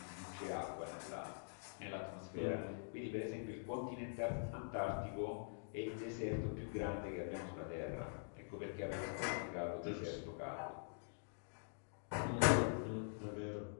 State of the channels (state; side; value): silent; right; digital silence